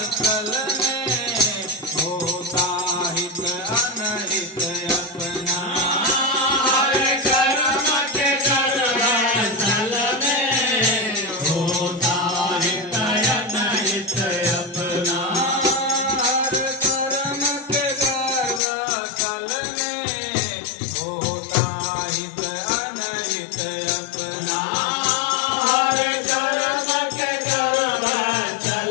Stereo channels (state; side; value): drops out; right; at 18.6 s